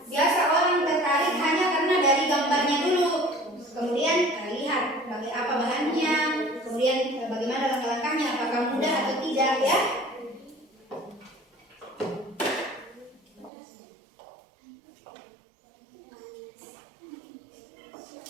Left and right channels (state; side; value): drops out; left; at 13.5 s